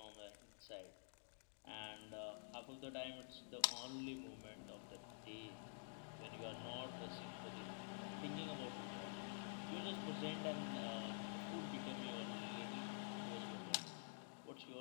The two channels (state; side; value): silent; right; digital silence